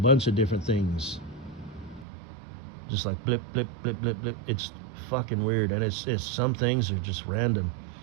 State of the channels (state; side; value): drops out; left; at 2.1 s